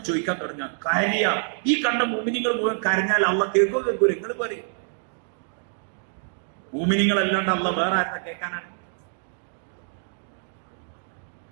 ചോദിക്കാൻ തുടങ്ങുക, കരയ. ഈ കണ്ട മോമിനികൾ മുഴുവൻ കരഞ്ഞാൽ അള്ളാഹ് കേൾക്കൂല. നിങ്ങൾ പറയും മോമിനികൾ അല്ലാണ്ട് അള്ളാഹ് വേറെ ആരെന്ന് കേൾക്കാനാണ്?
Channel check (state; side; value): silent; left; 61 dB below the other